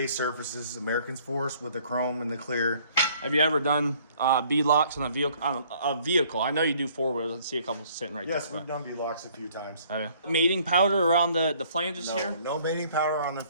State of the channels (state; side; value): inverted; both; correlation -0.59